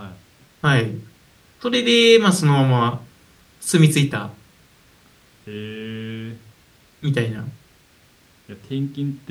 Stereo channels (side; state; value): both; identical; correlation 1.00